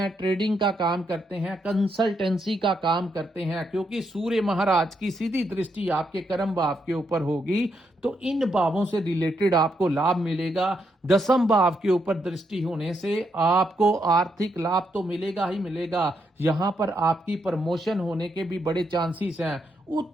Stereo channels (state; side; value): normal; both; correlation 0.79